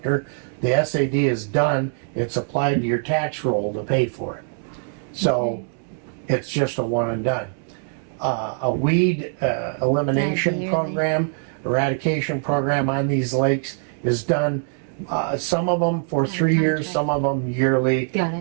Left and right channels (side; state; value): left; silent; 61 dB below the other